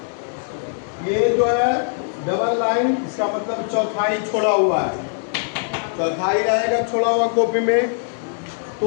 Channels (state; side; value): silent; right; 65 dB below the other